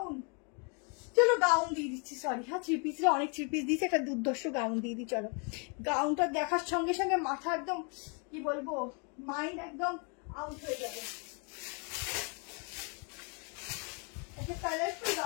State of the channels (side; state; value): right; quieter; 36.2 dB